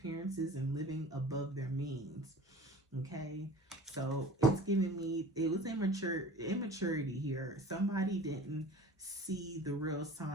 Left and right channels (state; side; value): normal; both; correlation 0.41